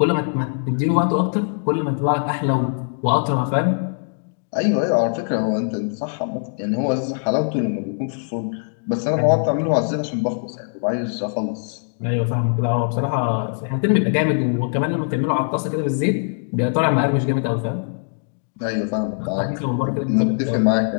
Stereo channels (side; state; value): right; silent; digital silence